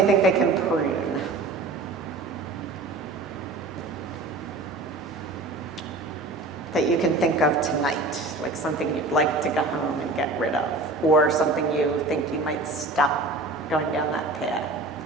think they can prune? That you can think of tonight, like something you'd like to go home and get rid of, or something you think you might stop going down that path?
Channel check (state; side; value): quieter; left; 3.2 dB